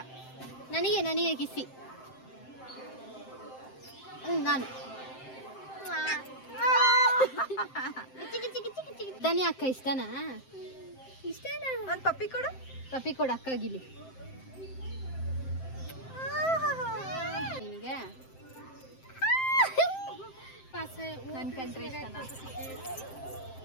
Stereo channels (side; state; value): right; late; 7.7 ms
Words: ನನಗೆ ಕಿಸಿ. ನಾನು ಧನಿ ಅಕ್ಕ ಇಷ್ಟನಾ? ಒಂದ್ ಪಪ್ಪಿ ಕೊಡು ಅಕ್ಕಾಗಿಲಿ. ನಿನಗೆ ನನ್ ಕಂಡ್ರೆ ಇಷ್ಟನಾ?